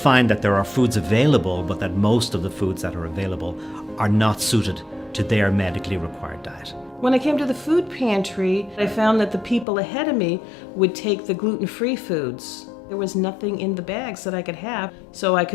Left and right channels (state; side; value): drops out; right; at 9.7 s